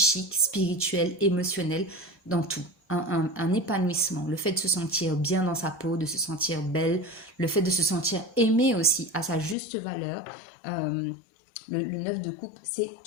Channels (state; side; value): drops out; right; at 9.6 s